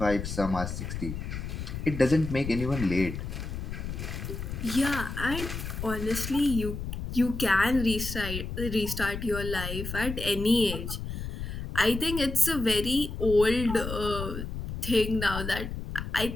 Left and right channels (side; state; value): left; noise; rumble, 6 dB below the sound